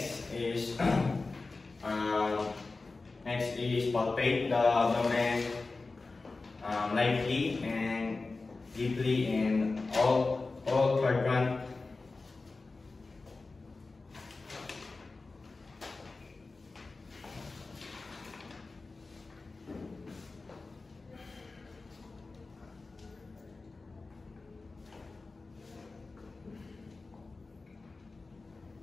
is palpate the abdomen lightly and deeply in all quadrant.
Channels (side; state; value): right; quieter; 3.7 dB